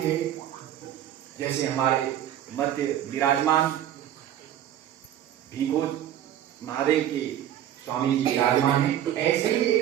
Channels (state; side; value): quieter; left; 11.3 dB